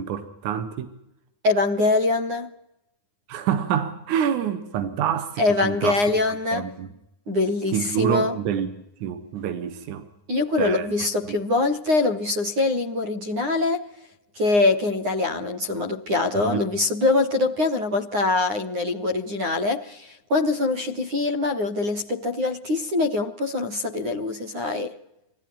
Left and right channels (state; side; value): late; left; 9.7 ms